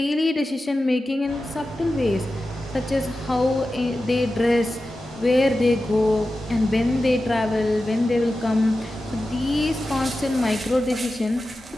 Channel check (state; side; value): normal; both; correlation 0.93